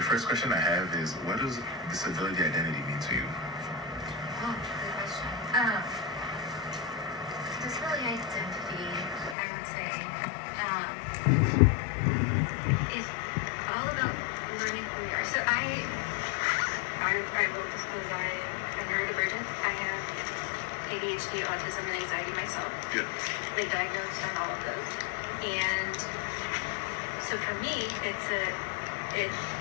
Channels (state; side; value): drops out; right; at 9.3 s